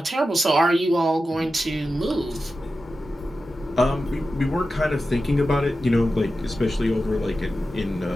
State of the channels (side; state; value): both; normal; correlation 0.92